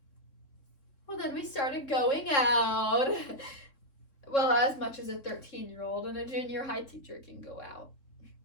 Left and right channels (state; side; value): late; right; 3.7 ms